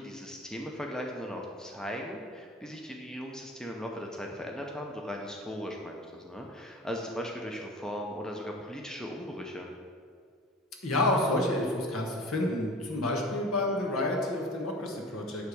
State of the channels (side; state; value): both; normal; correlation 0.39